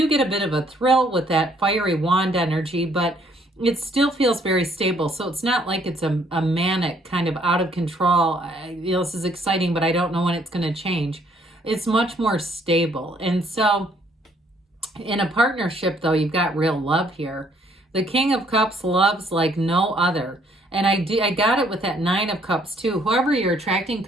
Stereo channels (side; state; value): both; normal; correlation 0.65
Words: get a bit of a thrill with that fiery wand energy, but it still feels very stable. So it's not like it's a manic kind of out of control. This is exciting, but I don't know when it's going to change. It's much more stable. And so in a partnership, though, you've got real love here. The King of Cups loves like no other. And I got it with that Nine of Cups too. Whoever you're attracting